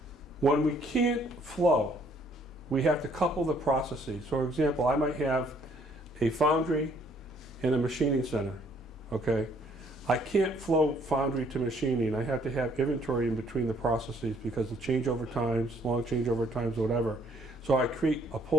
When we can't flow, we have to couple the processes. For example, I might have a foundry and a machining center, okay? I can't flow foundry to machining. I have to have inventory in between the processes because of changeover times, long changeover times, whatever. So I create a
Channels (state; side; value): normal; both; correlation 0.64